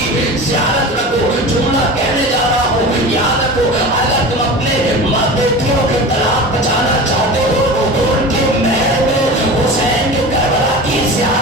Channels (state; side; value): normal; both; correlation 0.32